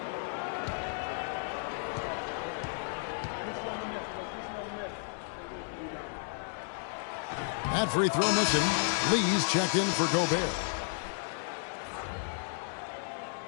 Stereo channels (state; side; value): silent; right; digital silence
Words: That free throw missing. Lee's checked in for Gobert.